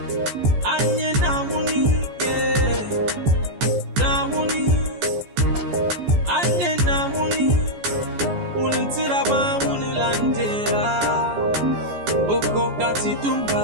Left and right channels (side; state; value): left; late; 14 ms